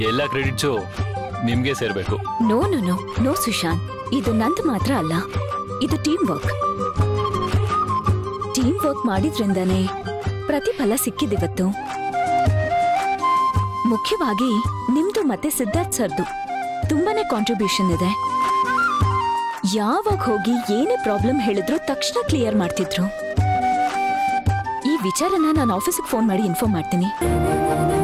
ಎಲ್ಲ ಕ್ರೆಡಿಟ್ಸು ನಿಮ್ಗೆ ಸೇರ್ಬೇಕು. No no no no Sushant, ಇದು ನಂದು ಮಾತ್ರ ಅಲ್ಲ, ಇದು ಟೀಮ್ ವರ್ಕ್ ಮಾಡಿದ್ರಿಂದಾನೇ ಪ್ರತಿಫಲ ಸಿಕ್ಕಿದಿವತ್ತು. ಮುಖ್ಯವಾಗಿ ನಿಮ್ದು ಮತ್ತೆ ಸಿದ್ಧಾರ್ಥ್ ಸರ್ದು ತುಂಬಾನೇ ಕಾಂಟ್ರಿಬ್ಯೂಷನ್ ಇದೆ. ಯಾವಾಗ ಹೋಗಿ ಏನೇ ಪ್ರಾಬ್ಲಮ್ ಹೇಳಿದ್ರು ತಕ್ಷಣ ಕ್ಲಿಯರ್ ಮಾಡ್ತಿದ್ರು. ಈ ವಿಚಾರನ ನಾನು ಆಫೀಸಿಗೆ ಫೋನ್ ಮಾಡಿ ಇನ್ಫಾರ್ಮ್ ಮಾಡ್ತೀನಿ.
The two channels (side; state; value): both; identical; correlation 1.00